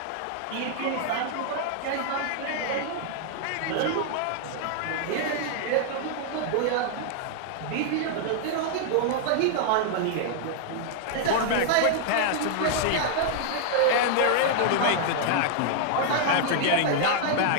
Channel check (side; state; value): both; different; correlation -0.01